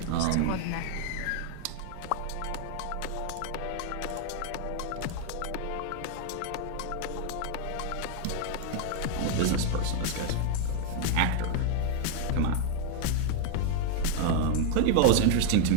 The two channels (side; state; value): both; different; correlation 0.00